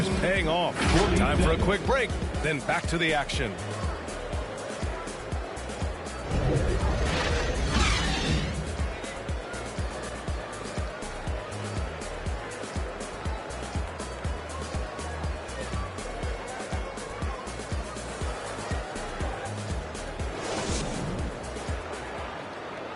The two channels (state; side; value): identical; both; correlation 1.00